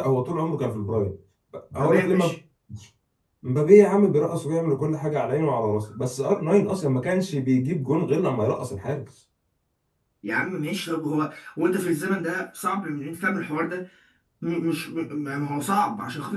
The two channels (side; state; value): both; identical; correlation 1.00